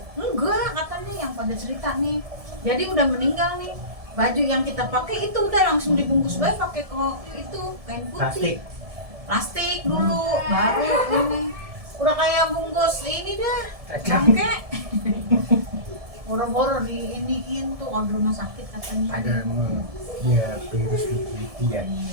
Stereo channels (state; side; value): late; left; 1.7 ms